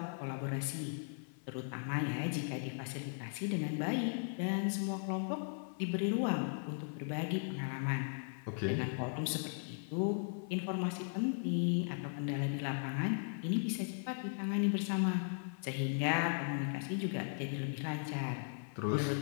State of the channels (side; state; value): right; silent; 53 dB below the other